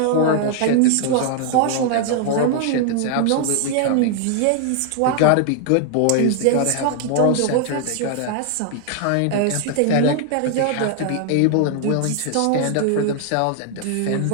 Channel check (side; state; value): both; different; correlation 0.00